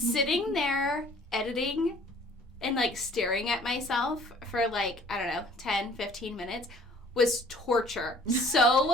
there editing and staring at myself for 10, 15 minutes was torture.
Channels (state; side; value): normal; both; correlation 0.54